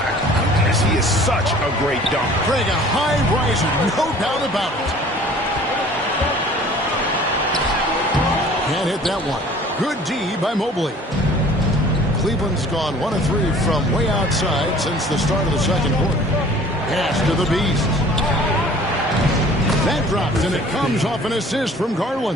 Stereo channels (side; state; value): both; normal; correlation 0.49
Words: goodness, he is such a great dunk. Craig, a high riser, no doubt about it. Can't hit that one. Good D by Mobley. Cleveland's gone 1 of 3 from way outside since the start of the second quarter. Pass to the Beast. That drops, and it comes off an assist from